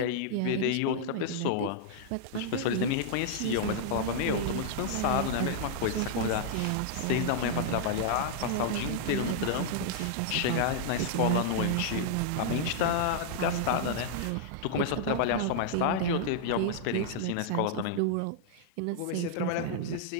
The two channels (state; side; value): different; both; correlation -0.01